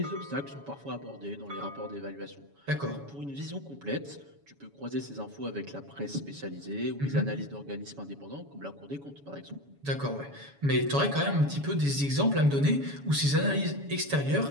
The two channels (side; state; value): left; late; 7.1 ms